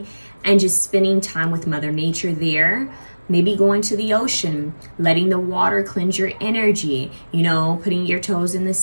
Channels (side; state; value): both; inverted; correlation -1.00